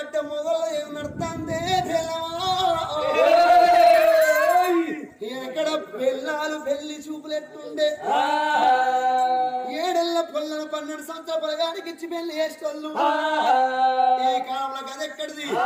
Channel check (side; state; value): both; identical; correlation 1.00